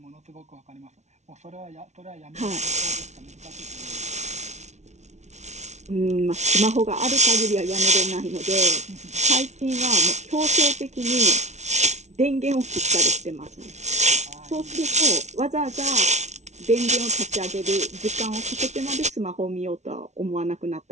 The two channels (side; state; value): left; late; 0.32 ms